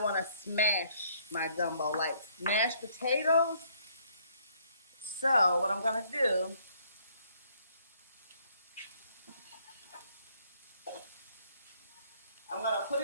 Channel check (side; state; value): both; inverted; correlation -0.65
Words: to smash my gumbo like mashed potatoes. So what I'm going to do, I'm going to put